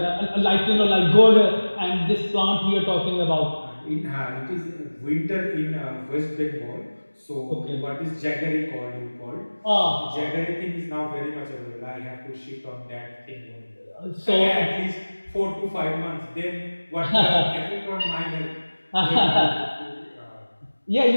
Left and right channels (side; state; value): both; inverted; correlation -1.00